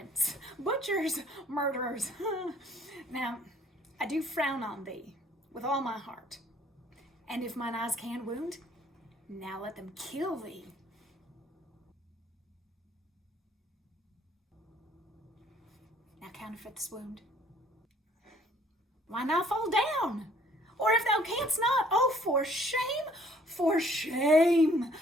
butchers, murderers. Now, I do frown on thee with all my heart, and if mine eyes can wound, now let them kill thee. Now counterfeit this wound. Why not fall down? Or if thou canst not, oh, for shame,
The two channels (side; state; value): both; normal; correlation 0.59